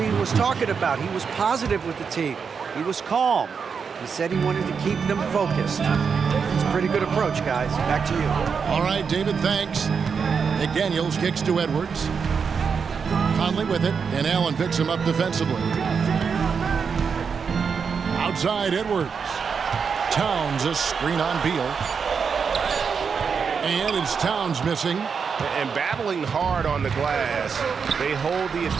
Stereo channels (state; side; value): quieter; left; 6.0 dB